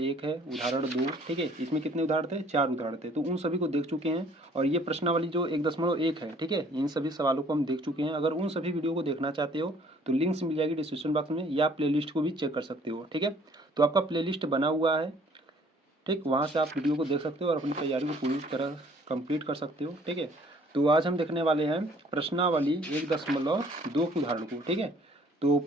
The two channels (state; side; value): normal; both; correlation 0.58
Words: है, उदाहरण 2। ठीक है, इसमें कितने उदाहरण थे? 4 उदाहरण थे, तो उन सभी को देख चुके हैं। और ये प्रश्नावली जो 1.1 है, ठीक है, इन सभी सवालों को हम देख चुके हैं। अगर उन सभी वीडियो को देखना चाहते हो तो लिंक्स मिल जाएगी डिस्क्रिप्शन बॉक्स में, या प्ले लिस्ट को भी चेक कर सकते हो। ठीक है, तो आपका प्ले लिस्ट बना हुआ है, ठीक, वहाँ से आप वीडियो को देख सकते हो और अपनी तैयारी को पूरी तरह कंप्लीट कर सकते हो। ठीक है, तो आज हम देखने वाले हैं प्रश्नावली 1.2 के उदाहरण को। ठीक है, तो